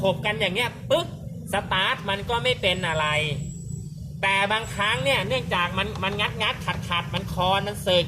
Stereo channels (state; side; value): identical; both; correlation 1.00